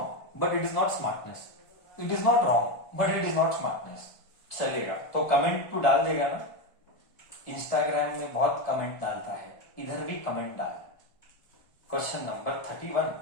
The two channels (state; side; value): late; right; 1.4 ms